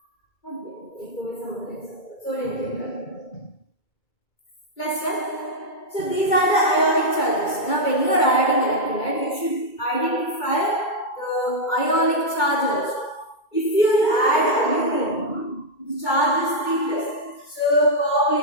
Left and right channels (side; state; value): right; late; 2.3 ms